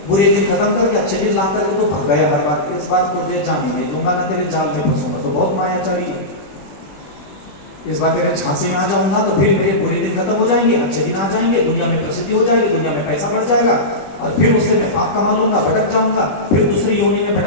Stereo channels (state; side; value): late; right; 21 ms